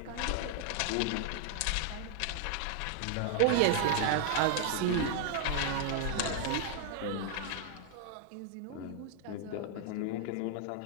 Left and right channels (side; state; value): both; different; correlation 0.00